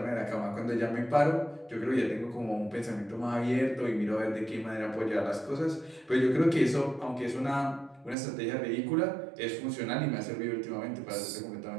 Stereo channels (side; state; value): left; drops out; at 8.2 s